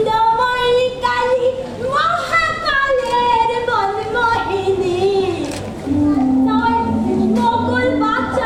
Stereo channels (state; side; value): identical; both; correlation 1.00